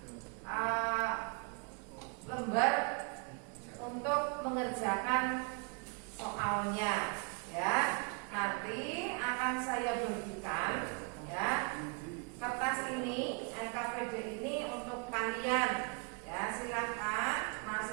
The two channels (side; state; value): left; quieter; 35.3 dB